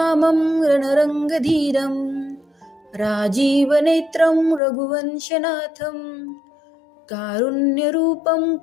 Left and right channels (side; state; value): right; drops out; at 4.6 s